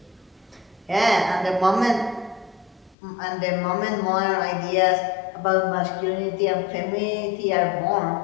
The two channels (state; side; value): drops out; right; at 3.0 s